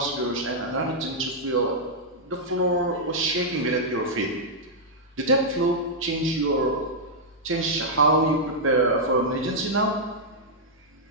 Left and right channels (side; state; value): both; normal; correlation -0.06